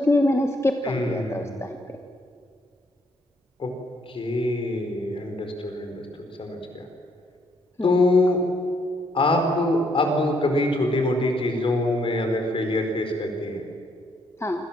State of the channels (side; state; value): both; normal; correlation 0.71